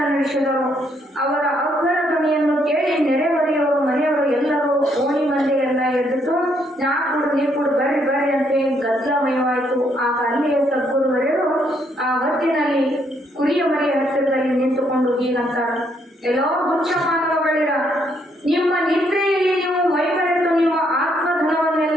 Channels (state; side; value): normal; both; correlation 0.72